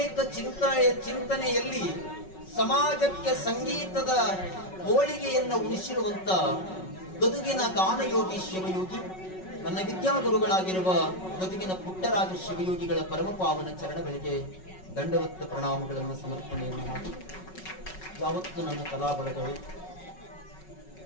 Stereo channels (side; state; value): right; late; 5.4 ms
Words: ಚಿಂತನೆಯಲ್ಲಿ ಸಮಾಜಕ್ಕೆ ಸಂಗೀತದ ಹೋಳಿಗೆಯನ್ನು ಉಳಿಸಿರುವಂತ ಗದುಗಿನ ಗಾನಯೋಗಿ ಶಿವಯೋಗಿ, ನನ್ನ ವಿದ್ಯಾಗುರುಗಳಾಗಿರುವ ಗದುಗಿನ ಪುಟ್ಟರಾಜ ಶಿವಯೋಗಿಗಳ ಪರಮಪಾವನ ಚರಣಗಳಿಗೆ ದಂಡವತ್ತ ಪ್ರಣಾಮಗಳನ್ನು ಸಮರ್ಪಣೆಯನ್ನು ಮಾಡಿ, ಯಾವತ್ತು ನನ್ನ ಕಲಾ ಬಳಗವೇ.